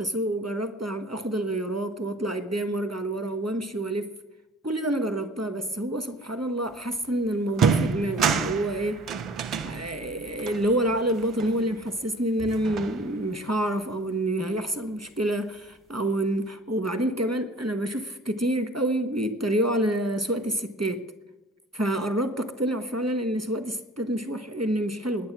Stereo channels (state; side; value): normal; both; correlation 0.47